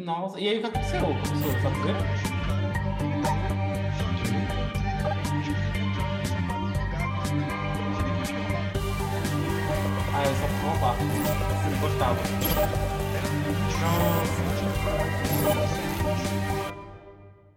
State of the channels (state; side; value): identical; both; correlation 1.00